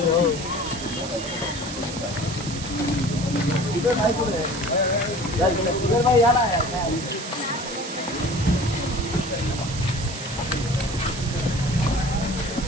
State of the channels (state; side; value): noise; right; hiss, 10 dB below the sound